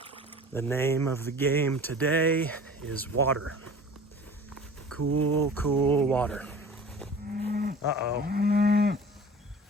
The name of the game today is water. Cool, cool water. Uh-oh.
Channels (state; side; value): normal; both; correlation 0.42